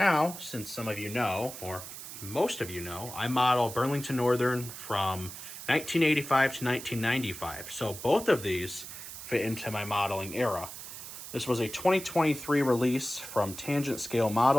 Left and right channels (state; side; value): noise; right; hiss, 11 dB below the sound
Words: since some of you know, or most of you know, I model Burlington Northern from 1985 to 1995. So both of these fit into my modeling era. This was a 2023 release from Tangent Scale